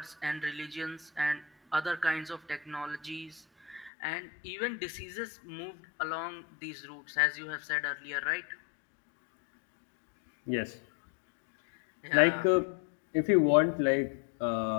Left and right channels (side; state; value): right; drops out; at 3.9 s